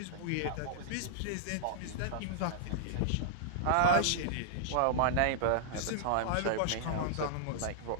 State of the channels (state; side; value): different; both; correlation -0.01